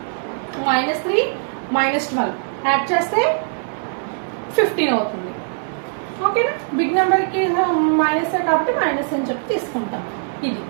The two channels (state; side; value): silent; left; 65 dB below the other